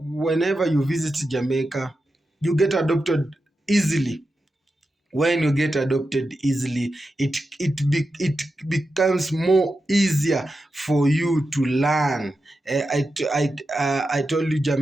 you visit Jamaica, you get adopted easily. When you get adopted easily, it becomes more easier for you to learn. I told you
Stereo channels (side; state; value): both; normal; correlation 0.90